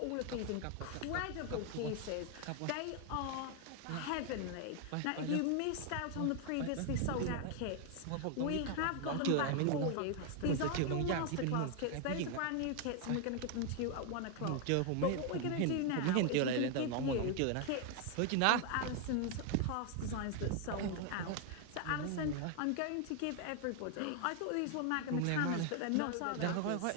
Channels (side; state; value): both; different; correlation 0.01